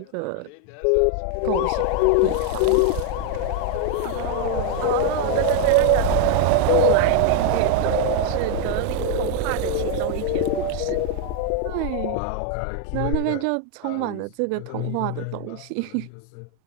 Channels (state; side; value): different; both; correlation 0.00